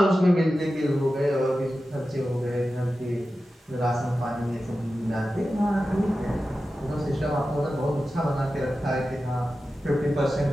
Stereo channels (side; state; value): both; normal; correlation 0.93